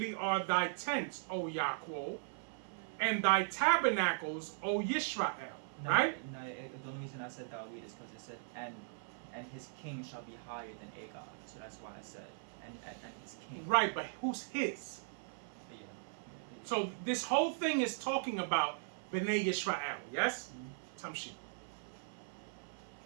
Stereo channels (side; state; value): left; silent; 52 dB below the other